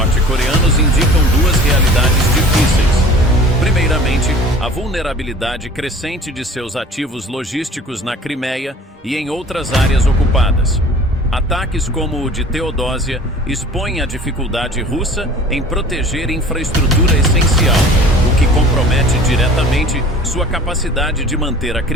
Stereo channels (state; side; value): normal; both; correlation 0.46